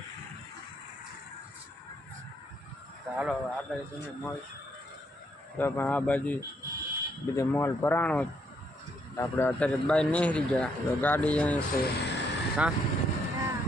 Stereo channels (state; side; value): normal; both; correlation 0.73